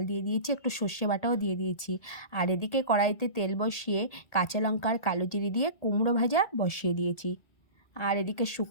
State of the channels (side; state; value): right; late; 1.8 ms